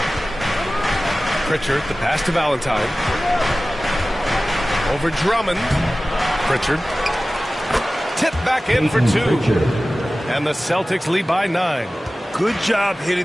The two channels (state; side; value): normal; both; correlation 0.97